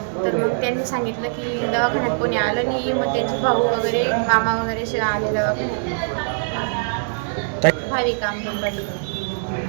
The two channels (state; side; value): silent; left; digital silence